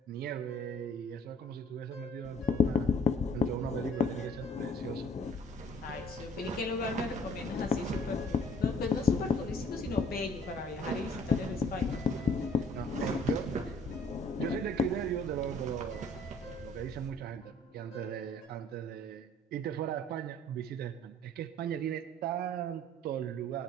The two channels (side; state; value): both; normal; correlation 0.56